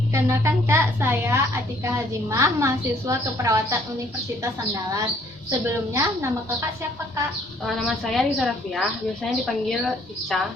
Kenalkan Kak, saya Atika Hazimah, mahasiswa keperawatan Universitas Andalas. Sebelumnya, nama Kakak siapa Kak? Nama saya Risa Rafiah, biasanya dipanggil Ica.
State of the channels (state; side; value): normal; both; correlation 0.63